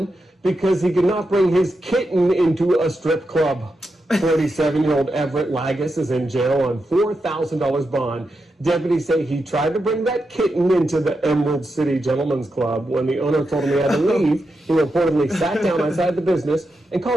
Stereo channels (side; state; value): both; normal; correlation 0.87